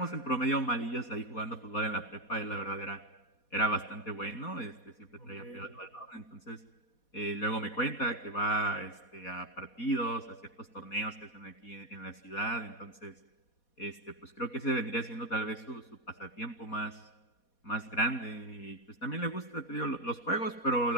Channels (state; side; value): late; right; 4.2 ms